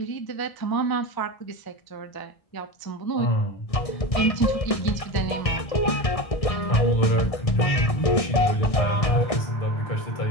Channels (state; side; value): late; right; 1.6 ms